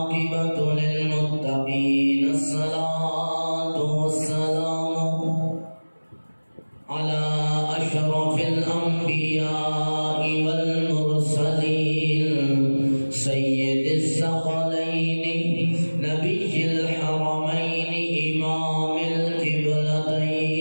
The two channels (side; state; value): both; inverted; correlation -1.00